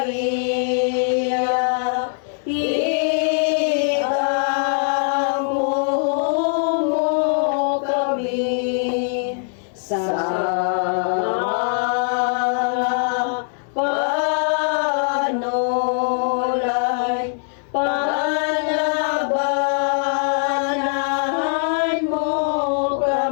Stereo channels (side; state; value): right; silent; 65 dB below the other